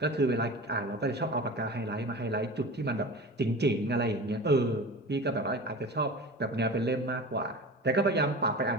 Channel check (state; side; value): normal; both; correlation 0.34